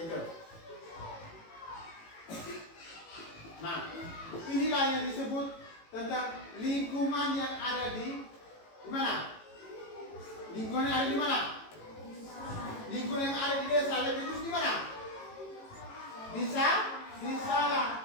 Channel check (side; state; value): right; late; 18 ms